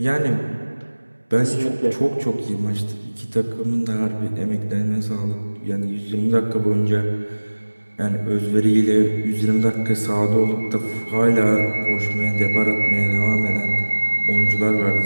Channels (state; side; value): inverted; both; correlation -1.00